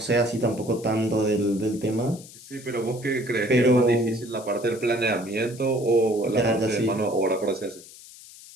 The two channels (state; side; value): noise; left; hiss, 19 dB below the sound